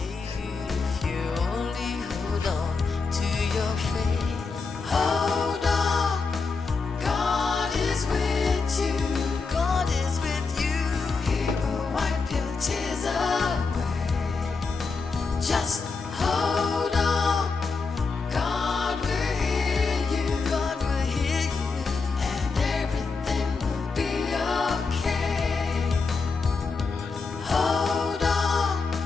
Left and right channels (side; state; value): right; quieter; 4.5 dB